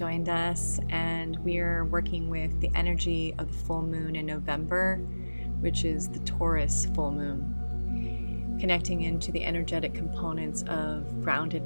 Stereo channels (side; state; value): both; inverted; correlation -1.00